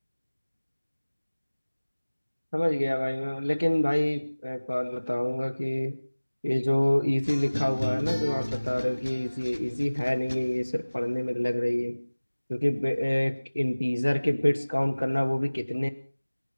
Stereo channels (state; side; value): inverted; both; correlation -1.00